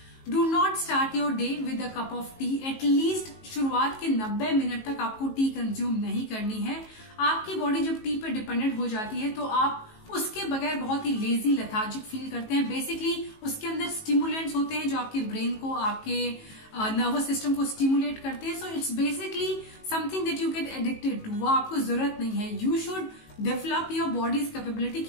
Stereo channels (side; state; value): right; late; 19 ms